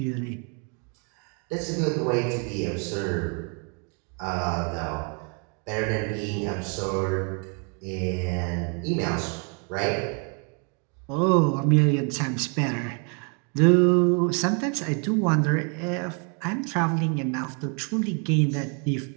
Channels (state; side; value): quieter; left; 37.2 dB